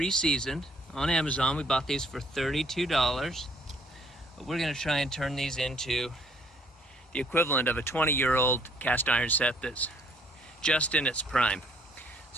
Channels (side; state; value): both; normal; correlation 0.63